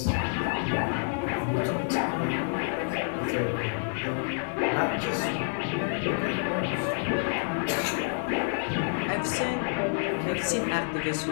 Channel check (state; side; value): silent; right; 59 dB below the other